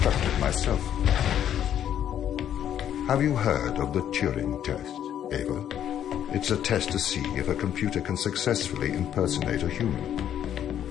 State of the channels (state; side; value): quieter; right; 10.2 dB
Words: myself. Have you heard of the Turing Test, Ava? It's a test to see if a computer can successfully impersonate a human.